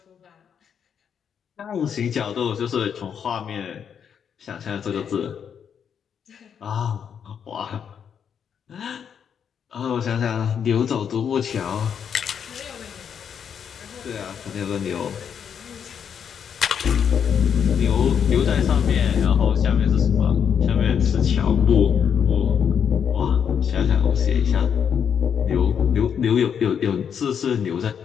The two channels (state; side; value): quieter; right; 7.7 dB